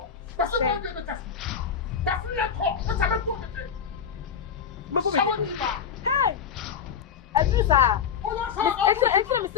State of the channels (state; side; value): quieter; right; 7.3 dB